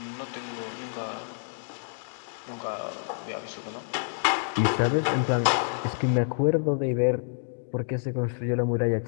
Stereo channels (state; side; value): silent; right; digital silence